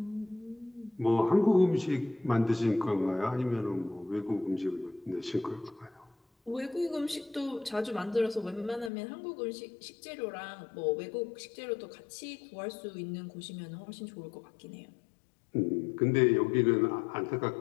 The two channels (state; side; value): drops out; right; at 8.9 s